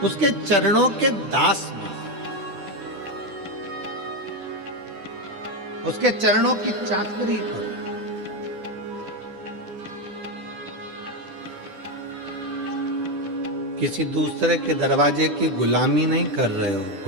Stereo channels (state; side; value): late; left; 11 ms